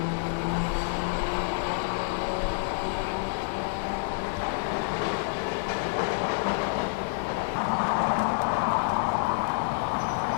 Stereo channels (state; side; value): silent; right; 59 dB below the other